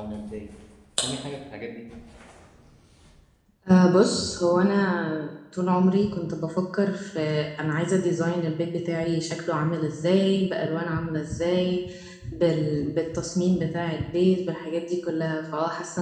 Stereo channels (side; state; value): both; identical; correlation 1.00